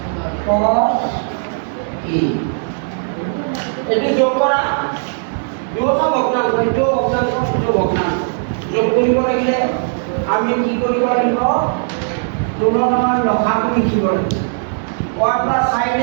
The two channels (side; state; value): left; silent; 68 dB below the other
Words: cos a এটি যোগ করা দুটা ভগ্নাংশ এইটো ভগ্নাংশ এইটো ভগ্নাংশ যোগ কৰিব লাগিলে আমি কি কৰিব লাগিব তুলনাৰ লসাগু লিখিব লাগিব 1 plus sin